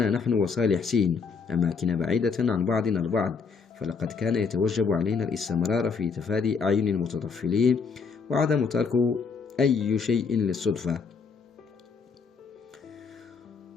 نحن وصالح سين أماكن بعيدة عن بعضنا البعض، فلقد كان يتوجب علينا الاستمرار في تفادي أعين المتطفلين وعدم ترك أي شيء للصدفة.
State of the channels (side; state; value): right; quieter; 5.4 dB